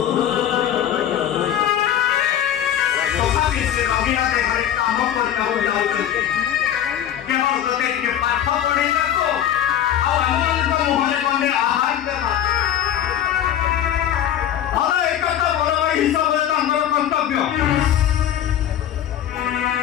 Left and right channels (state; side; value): quieter; right; 10.6 dB